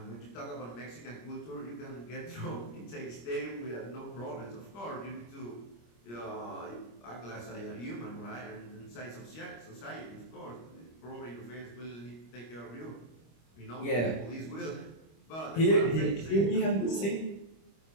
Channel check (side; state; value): right; late; 25 ms